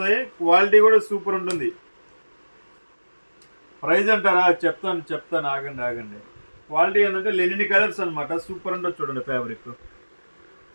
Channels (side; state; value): both; inverted; correlation -1.00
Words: క్వాలిటీ కూడా సూపర్ ఉంటుంది. ప్రైస్ అంటారా? చెప్తాను ఆగండి. క్వాలిటీ ఏంటంటే లెనిన్ కలర్స్ అనమాట, సూపర్ ఉంటుంది. చూడండి ఫ్యాబ్రిక్